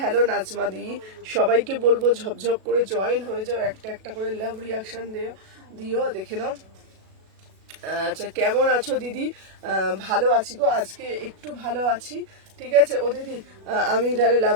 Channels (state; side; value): late; left; 37 ms